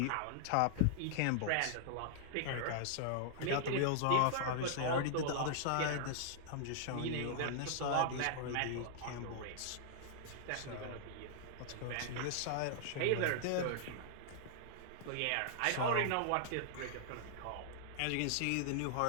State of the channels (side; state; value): both; different; correlation -0.01